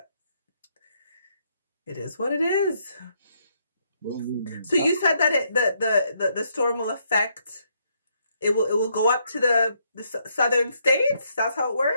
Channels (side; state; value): both; inverted; correlation -0.74